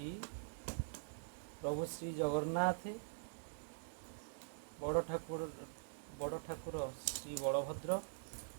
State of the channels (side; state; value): left; silent; digital silence